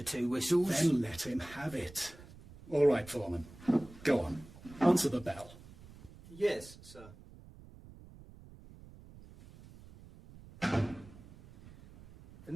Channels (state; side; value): noise; right; rumble, 19 dB below the sound